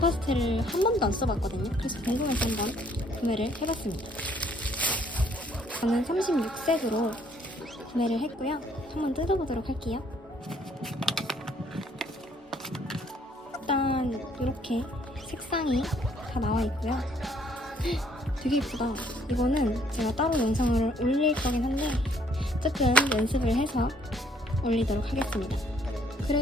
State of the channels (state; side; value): normal; both; correlation 0.64